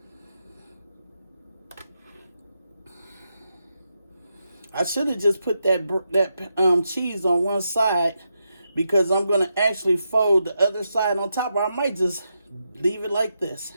I should have just put that cheese on one side, because I'm going to actually fold the other side on top. Or I might just leave it like this.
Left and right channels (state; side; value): inverted; both; correlation -0.85